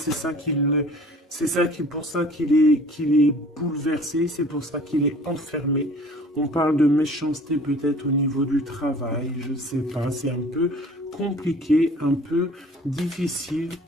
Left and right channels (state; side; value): normal; both; correlation 0.48